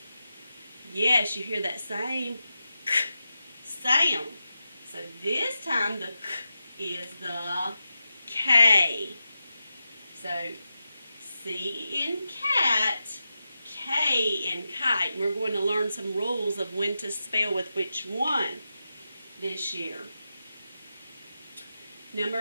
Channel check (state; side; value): inverted; both; correlation -0.89